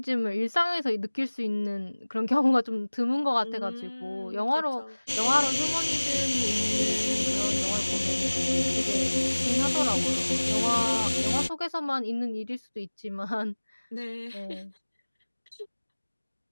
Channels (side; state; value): both; inverted; correlation -1.00